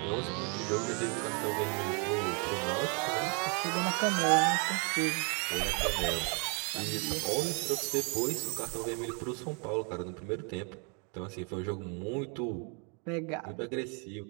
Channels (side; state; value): left; quieter; 36.3 dB